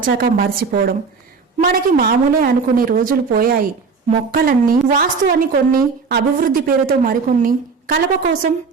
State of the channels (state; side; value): quieter; left; 5.0 dB